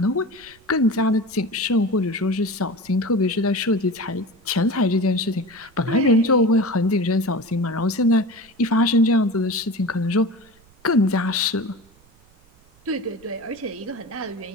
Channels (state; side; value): noise; right; rumble, 30 dB below the sound